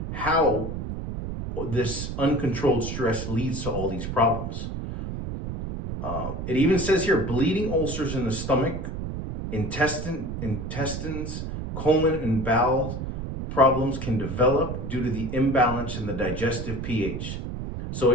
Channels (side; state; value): right; noise; rumble, 6 dB below the sound